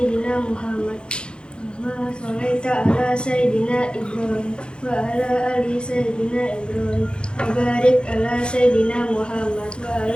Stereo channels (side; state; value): right; late; 0.052 ms